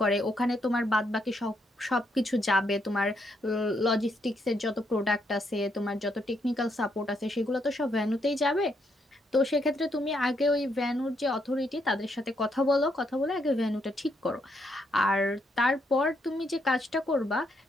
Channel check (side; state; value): both; normal; correlation 0.76